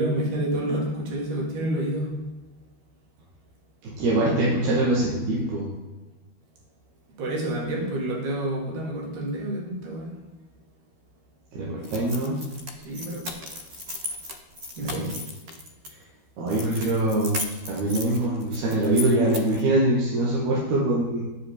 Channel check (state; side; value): late; left; 13 ms